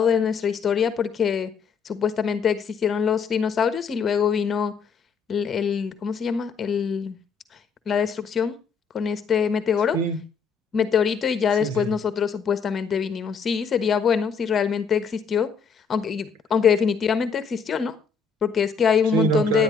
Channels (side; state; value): right; quieter; 5.7 dB